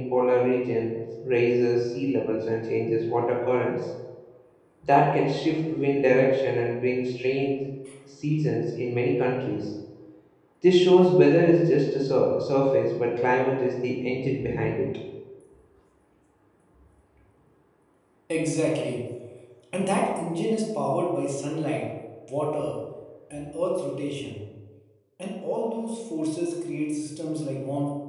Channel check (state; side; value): identical; both; correlation 1.00